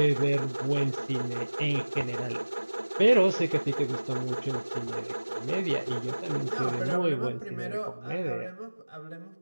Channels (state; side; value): inverted; both; correlation -1.00